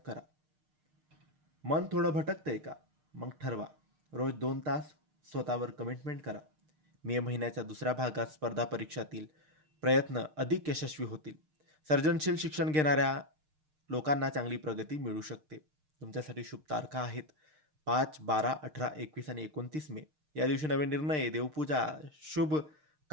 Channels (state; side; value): late; left; 6.6 ms